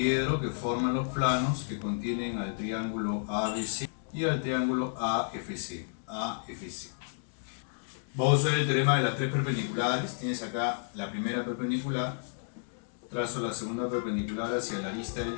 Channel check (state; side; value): silent; right; digital silence